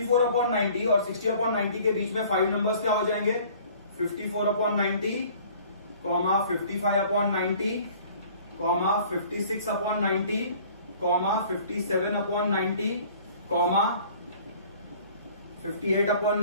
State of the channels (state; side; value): inverted; both; correlation -0.51